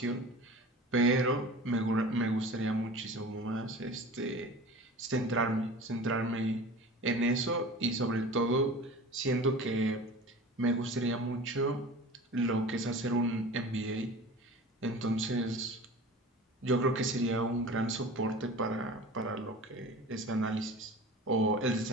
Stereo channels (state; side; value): normal; both; correlation 0.38